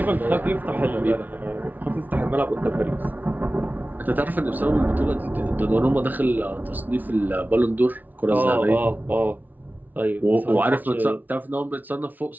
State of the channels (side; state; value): left; late; 0.082 ms